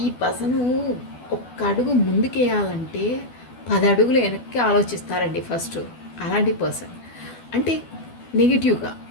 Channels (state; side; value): late; right; 12 ms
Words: ఈ పర్సను ఒక్క అడుగు ముందుకేయాలంటే 10 అడుగులు వెనక్కి ఆలోచిస్తారండి ఫస్ట్. అలాంటి పర్సన్ అంటే నెగిటివ్గా